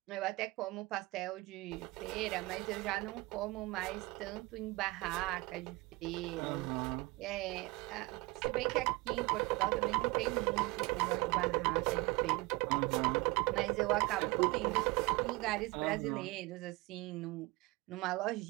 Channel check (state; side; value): quieter; left; 23.0 dB